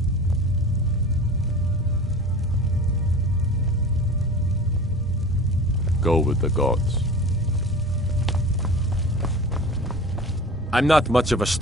Go with the gods. I'm not much of a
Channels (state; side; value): normal; both; correlation 0.37